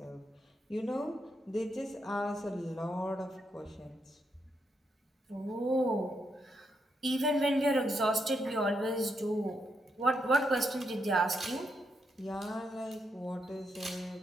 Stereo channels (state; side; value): normal; both; correlation 0.80